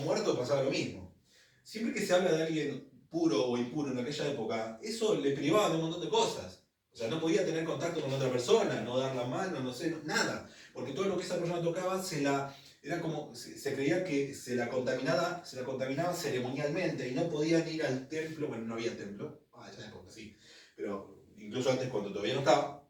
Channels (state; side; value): identical; both; correlation 1.00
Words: muerto pasaba lo mismo. Siempre que se habla de alguien puro o impuro en aquella época, eso le privaba de un montón de cosas. O sea, no podía tener contacto con otra persona, no dar la mano, no sé, nada. Porque todo lo que esa persona tocaba era como, se creía que se la contaminaba ceremonialmente y no podían ir al templo, bueno, no había templo, ya época sí, pero incluso antes cuando todavía no estaba,